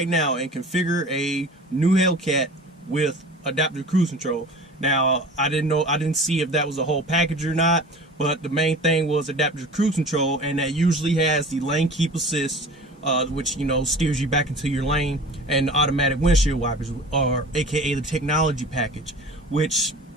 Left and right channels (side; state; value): both; normal; correlation 0.40